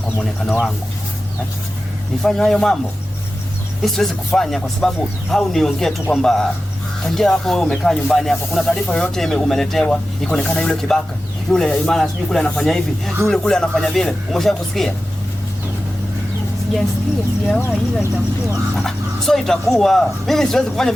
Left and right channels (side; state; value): both; normal; correlation 0.94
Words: muonekano wangu, nifanye hayo mambo? Mimi siwezi kufanya kwa sababu au niongee tu kwamba tangia hapo wewe umekaa nyumbani hapo, kuna taarifa yoyote umeletewa ikaonekana yule kibaka, yule imana sijui kule anafanya hivi, yule kule anafanya vile, umeshakusikia? Sijasikia, sijawahi, ila itakuwa. So itakuwa. Mimi siwezi kufanya